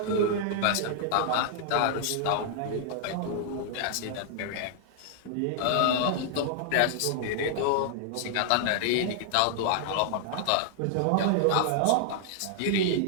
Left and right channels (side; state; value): both; different; correlation -0.01